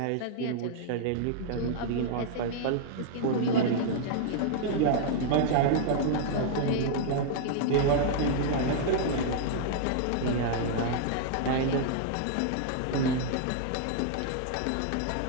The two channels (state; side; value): different; both; correlation -0.01